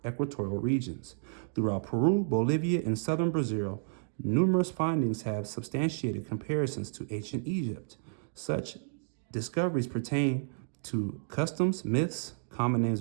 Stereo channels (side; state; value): left; silent; digital silence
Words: equatorial regions. Throughout Peru, Bolivia, and southern Brazil, numerous findings have substantiated comparisons to ancient Egypt. Such discoveries pertain to customs, myths, common names